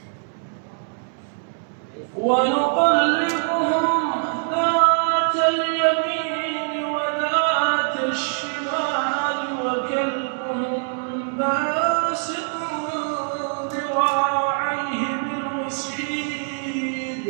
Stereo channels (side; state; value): left; silent; digital silence